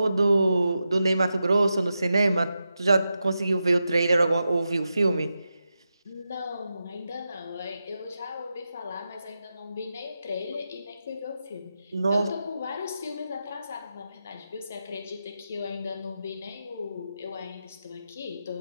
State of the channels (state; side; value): inverted; both; correlation -0.89